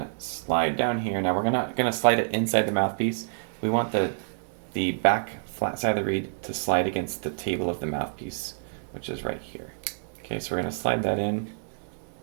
slide down here. Now we're not going to slide it inside the mouthpiece. We want the back flat side of the reed to slide against the table of the mouthpiece, which is right here. Okay, so we're going to slide that in.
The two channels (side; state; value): left; silent; digital silence